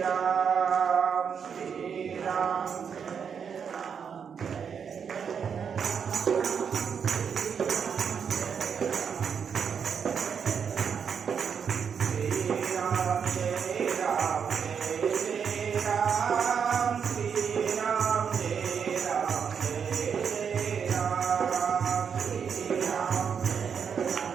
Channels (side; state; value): left; quieter; 6.9 dB